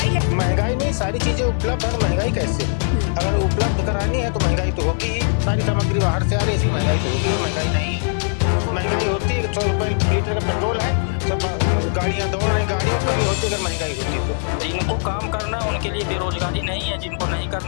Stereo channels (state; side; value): silent; right; digital silence